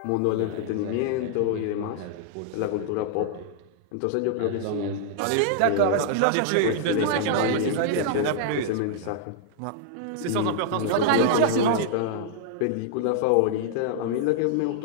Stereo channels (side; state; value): both; different; correlation -0.01